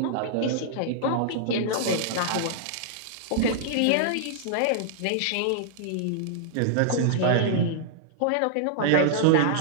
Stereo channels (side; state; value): both; different; correlation -0.01